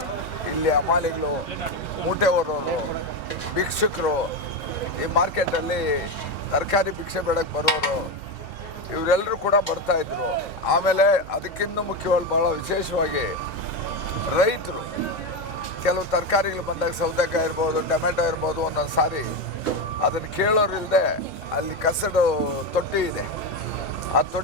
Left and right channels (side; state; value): both; normal; correlation 0.13